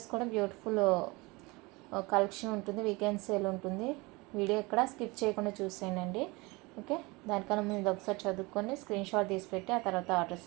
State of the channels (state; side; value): quieter; left; 24.7 dB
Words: కూడా బ్యూటిఫుల్ కలెక్షన్ ఉంటుంది, వీకెండ్ సేల్ ఉంటుంది. వీడియో ఎక్కడ స్కిప్ చేయకుండా చూసేయండి. ఓకే, దానికన్నా ముందు ఒకసారి చదువుకొని స్క్రీన్ షాట్ తీసి పెట్టి ఆ తర్వాత ఆర్డర్స్